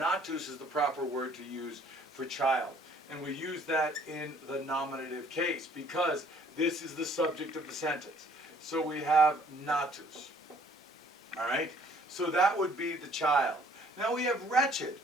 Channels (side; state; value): both; normal; correlation 0.59